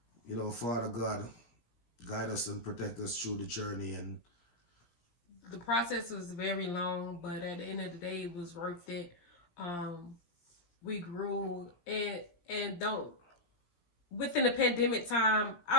you know, Father God, guide us and protect us through the journey. And the process was very long, but at the end of the day, it was worth it. We grew, and don't within the pandemic time,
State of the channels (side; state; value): right; late; 17 ms